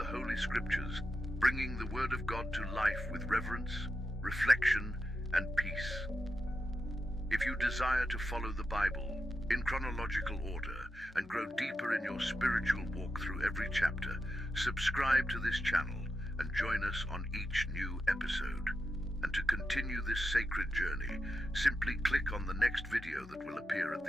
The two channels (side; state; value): both; normal; correlation 0.89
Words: Holy Scriptures, bringing the Word of God to life with reverence, reflection, and peace. If you desire to follow the Bible in chronological order and grow deeper in your spiritual walk through every chapter, subscribe to this channel and join us on each new episode. And to continue this sacred journey, simply click on the next video that will appear at